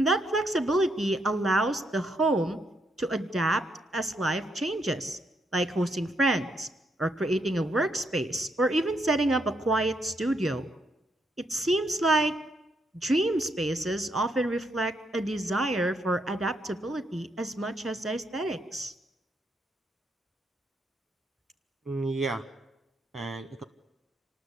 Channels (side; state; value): both; normal; correlation 0.76